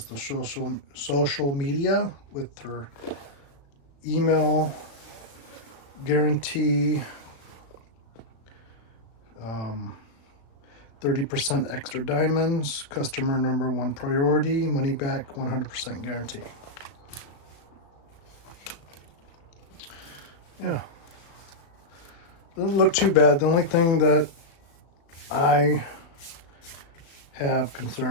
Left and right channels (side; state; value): right; late; 35 ms